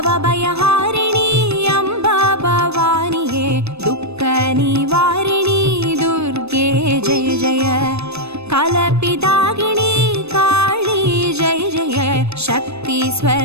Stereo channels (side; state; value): left; late; 0.80 ms